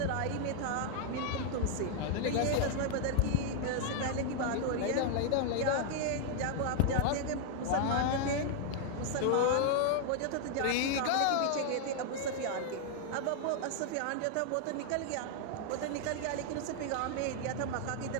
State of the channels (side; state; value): both; different; correlation 0.00